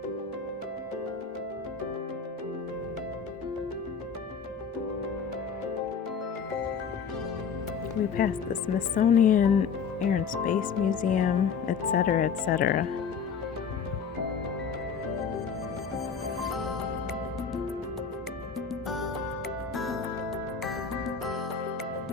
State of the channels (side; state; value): right; quieter; 6.2 dB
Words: We passed the Smithsonian, Air and Space Museum, etc., etc.